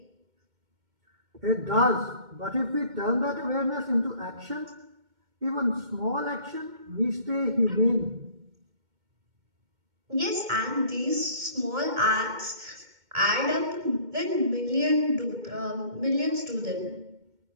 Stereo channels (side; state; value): left; late; 2.2 ms